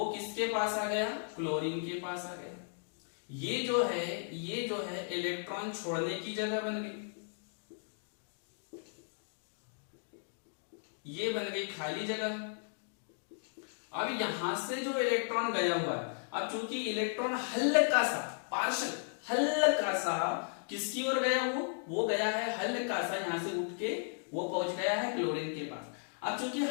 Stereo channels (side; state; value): right; silent; digital silence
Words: किसके पास आ गया, क्लोरीन के पास आ गया। ये जो है इलेक्ट्रॉन छोड़ने की जगह बन गई, ये बन गई खाली जगह। अब यहां से जो इलेक्ट्रॉन गया हुआ है, अब चूंकि इलेक्ट्रॉन हल्का सा पार्शल हल्का सा किसकी ओर गया, वो गया है हल्का सा यहां से उठ के वो पहुंच गया है क्लोरीन के पास। अब चूंकि